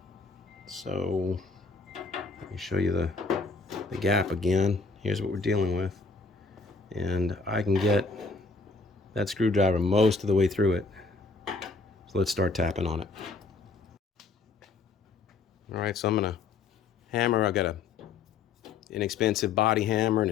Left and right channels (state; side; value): quieter; right; 4.1 dB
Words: So let me show you the gap again. Here's what we're dealing with, and I can get that screwdriver most of the way through it. So let's start tapping on it. All right, so I'm gonna hammer. I got a inexpensive body hammer